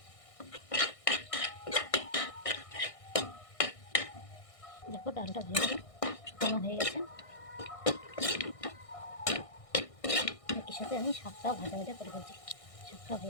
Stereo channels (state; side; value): late; right; 1.6 ms